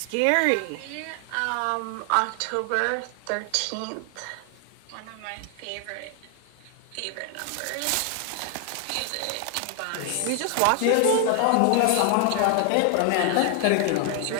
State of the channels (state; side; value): different; both; correlation 0.00